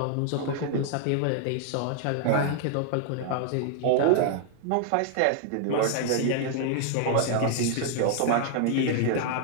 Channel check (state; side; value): different; both; correlation 0.00